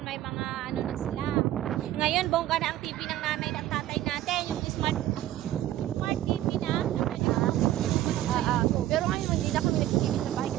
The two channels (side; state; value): left; quieter; 13.6 dB